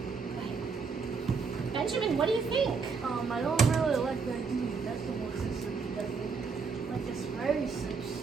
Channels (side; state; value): left; quieter; 5.2 dB